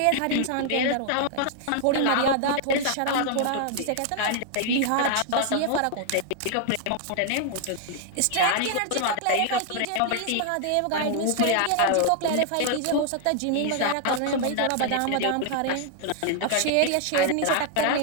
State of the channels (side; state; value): both; different; correlation 0.00